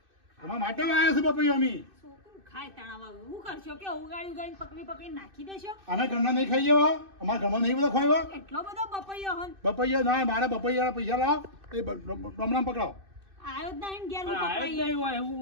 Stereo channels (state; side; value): late; left; 2.6 ms